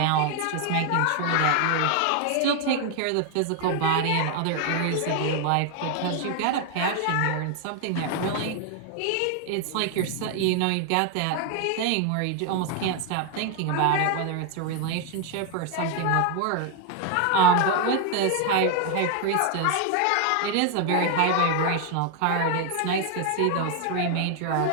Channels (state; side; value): different; both; correlation 0.00